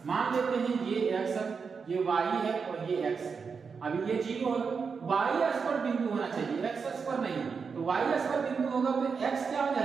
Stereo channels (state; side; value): quieter; left; 5.5 dB